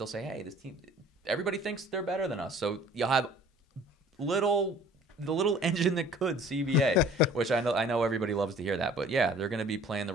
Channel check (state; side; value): normal; both; correlation 0.50